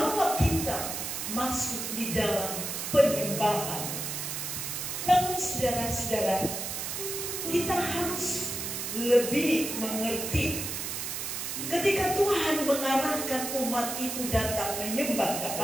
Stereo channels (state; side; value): noise; right; hiss, 4 dB below the sound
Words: kita masuk di dalam penyembahan. Namun saudara-saudara, kita harus lebih mengerti ketika Tuhan mengarahkan umat itu datang menyembah